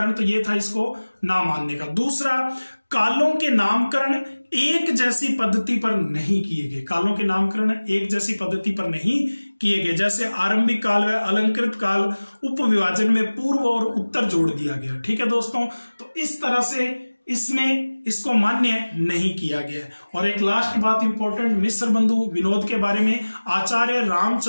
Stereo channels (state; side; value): inverted; both; correlation -1.00